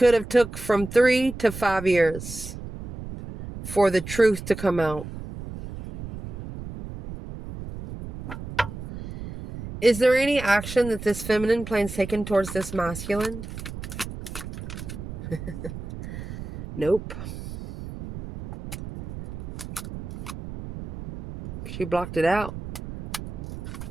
have took from 3 to 5 years for the truth to come out. Is there any action that this feminine plans taken towards this masculine? Nope. She blocked it out.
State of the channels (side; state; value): right; noise; rumble, 10 dB below the sound